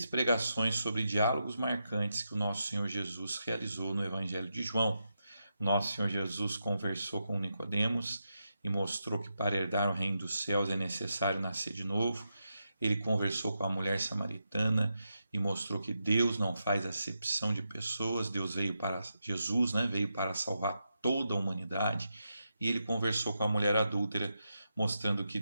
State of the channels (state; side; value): inverted; both; correlation -0.85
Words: pregações sobre diálogos marcantes que o nosso Senhor Jesus realizou no Evangelho de João. Nosso Senhor Jesus conversou com Nicodemos e mostrou que para herdar o reino dos céus é necessário nascer de novo. Ele conversou com a mulher samaritana e mostrou que Deus não faz acepção de pessoas. Jesus veio para salvar toda a humanidade. E ele conversou com a mulher adúltera, mostrando que